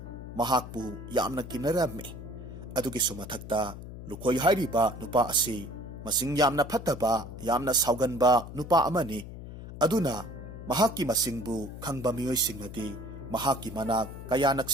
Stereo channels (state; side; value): noise; left; hum, 12 dB below the sound